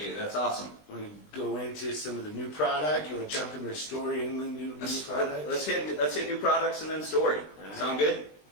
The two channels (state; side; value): late; right; 20 ms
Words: you. That's awesome. Want to go into some of the new product? You want to jump into the story and the new product? Let's hit new products and then story. Right. Sound good?